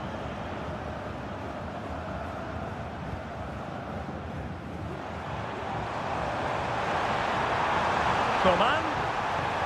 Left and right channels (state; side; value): identical; both; correlation 1.00